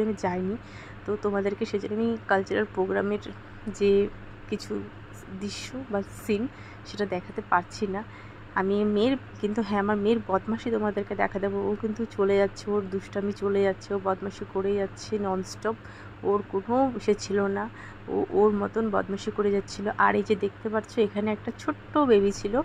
আমি যাইনি। তো তোমাদেরকে সেজন্য আমি কালচারাল প্রোগ্রামের যে কিছু দৃশ্য বা সিন সেটা দেখাতে পারছি না। আমি মেয়ের কিন্তু, হ্যাঁ আমার মেয়ের বদমাশি তোমাদেরকে দেখা দেবো। ও কিন্তু চলে যাচ্ছে, ওর দুষ্টামি চলে যাচ্ছে, ও বদমাশি করে যাচ্ছে ননস্টপ, ওর কোনো সে ছিল না, ও ওর মতন বদমাশি করে যাচ্ছিলো। আর এই যে দেখতে পাচ্ছ এখানে একটা ছোট্ট বেবি ছিল,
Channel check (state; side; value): identical; both; correlation 1.00